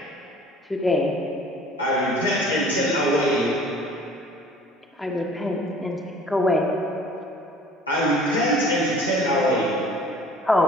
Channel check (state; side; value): normal; both; correlation 0.50